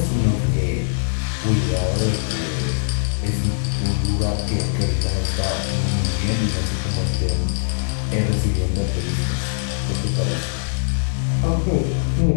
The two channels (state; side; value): silent; right; digital silence